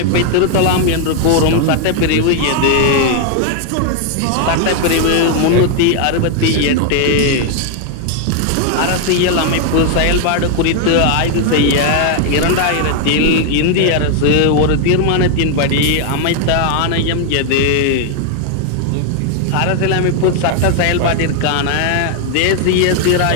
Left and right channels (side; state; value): both; different; correlation 0.00